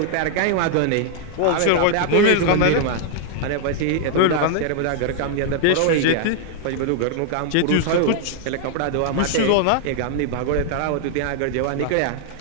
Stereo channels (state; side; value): different; both; correlation 0.00